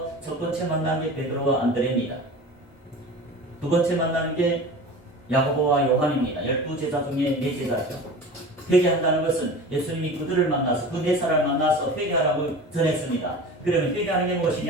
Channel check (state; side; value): normal; both; correlation 0.35